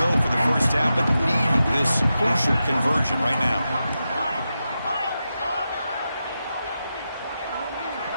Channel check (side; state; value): both; inverted; correlation -0.89